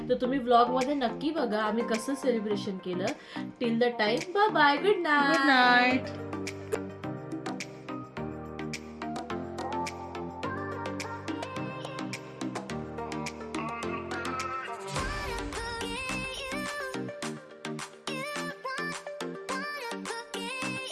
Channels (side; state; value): both; identical; correlation 1.00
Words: तर तुम्ही व्लॉगमध्ये नक्की बघा आम्ही कसं सेलिब्रेशन केलं. Till the time bye bye, good night. Good night.